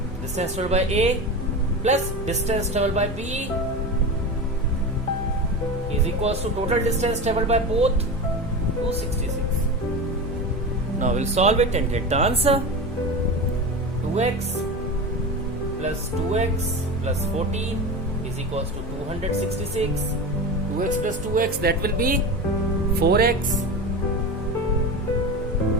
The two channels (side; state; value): both; normal; correlation 0.25